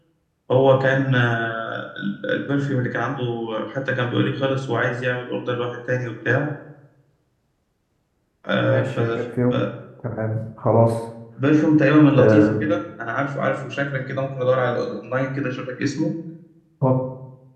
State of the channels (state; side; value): identical; both; correlation 1.00